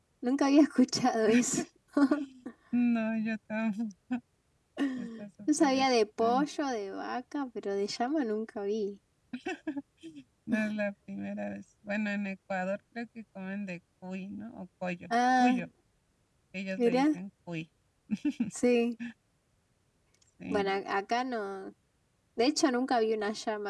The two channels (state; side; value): identical; both; correlation 1.00